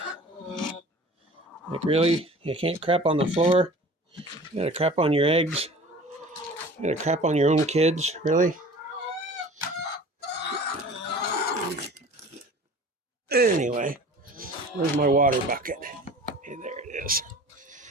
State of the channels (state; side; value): normal; both; correlation 0.43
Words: Like, really? You can't crap on the floor? You gotta crap on your eggs? You gotta crap on your own kids? Really? Anyway, where's my water bucket? Okay, there it is.